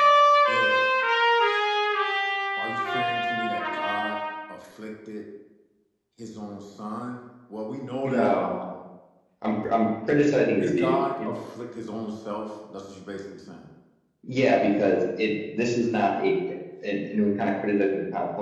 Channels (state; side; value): identical; both; correlation 1.00